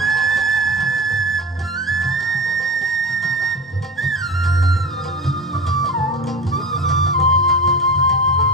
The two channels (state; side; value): normal; both; correlation 0.29